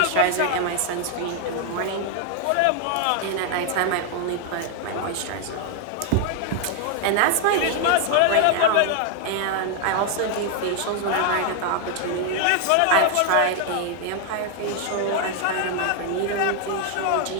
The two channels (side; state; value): both; different; correlation 0.00